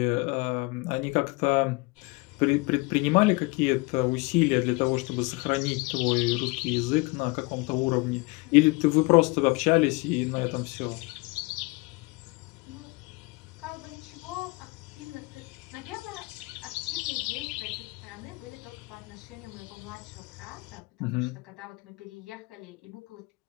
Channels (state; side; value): quieter; right; 26.4 dB